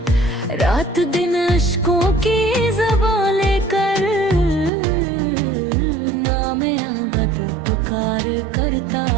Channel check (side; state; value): left; drops out; at 4.7 s